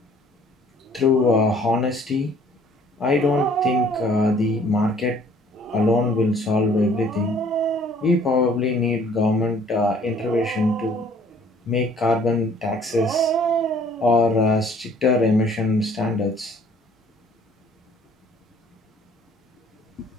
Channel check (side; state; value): both; normal; correlation 0.57